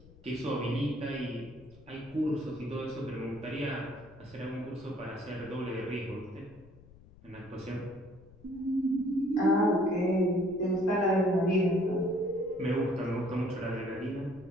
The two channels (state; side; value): noise; left; rumble, 23 dB below the sound